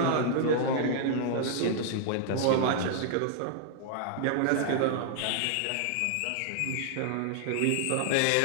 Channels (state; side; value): different; both; correlation -0.01